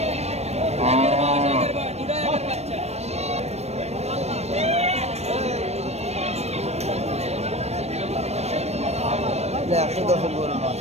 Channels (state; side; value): late; left; 0.31 ms